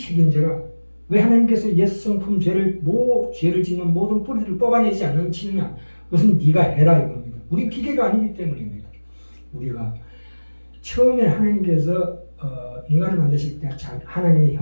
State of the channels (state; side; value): inverted; both; correlation -1.00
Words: 왜 하나님께서 옛 성품 죄를 짓는 모든 뿌리를 뽑아내지 않으시느냐? 그것은 네가 해라 이겁니다. 우리 기계가 아니기 때문입니다. 우리가 처음에 하나님께서 인간을 만드실 때 하나님의